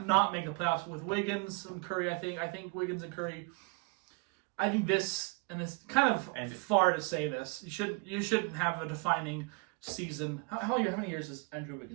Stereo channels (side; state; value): left; quieter; 31.7 dB